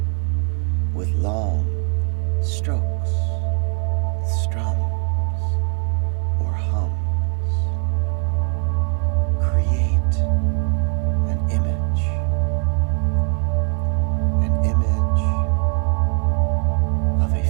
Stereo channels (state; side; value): quieter; left; 38.5 dB